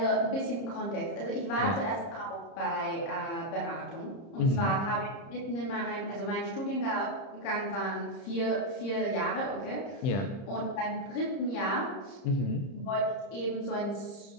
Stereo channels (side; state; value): right; late; 30 ms